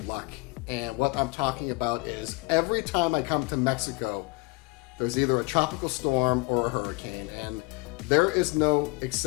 luck. And what I'm talking about is every time I come to Mexico, there's either a tropical storm or a hurricane. And there is no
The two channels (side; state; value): right; quieter; 26.4 dB